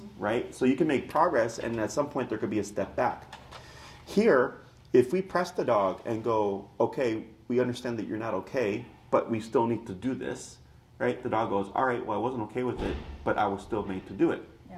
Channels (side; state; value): both; identical; correlation 1.00